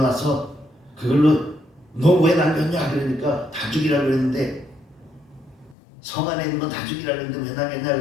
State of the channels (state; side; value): drops out; right; at 5.8 s